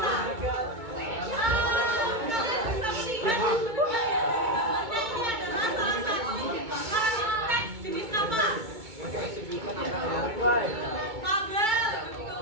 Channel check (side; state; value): left; late; 2.2 ms